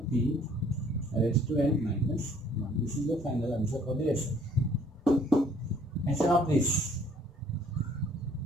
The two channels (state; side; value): normal; both; correlation 0.60